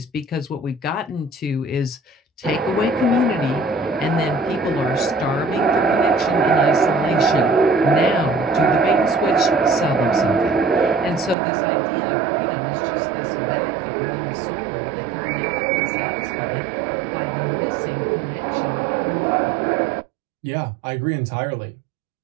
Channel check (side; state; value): left; drops out; at 11.4 s